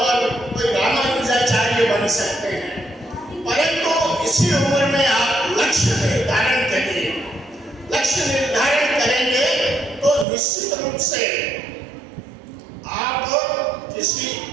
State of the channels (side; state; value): left; drops out; at 10.2 s